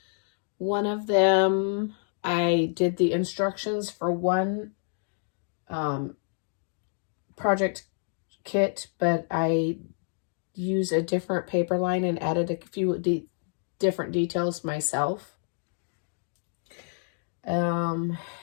One of them, I did the instructions for one project kit, but I used a different paper line and added a few different details myself. And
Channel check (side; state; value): right; silent; 59 dB below the other